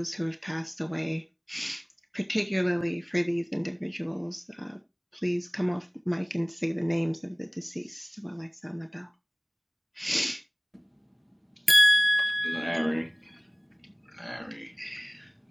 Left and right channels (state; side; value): identical; both; correlation 1.00